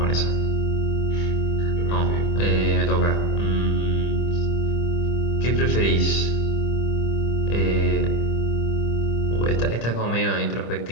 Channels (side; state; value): right; late; 25 ms